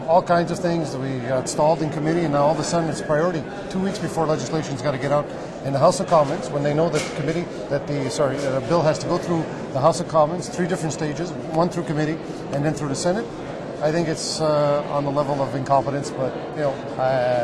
all kinds of things. We got stalled in committee, and now all of a sudden it's a priority. 2 weeks before legislation's got to get out in the House of Commons, when they know that the bill has to go through the House of Commons, 3 different stages, 1 through committee and then through the Senate. I think it's on the level of incompetence, but you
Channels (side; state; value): both; identical; correlation 1.00